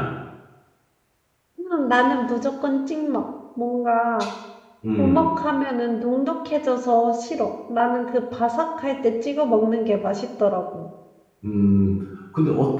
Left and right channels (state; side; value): identical; both; correlation 1.00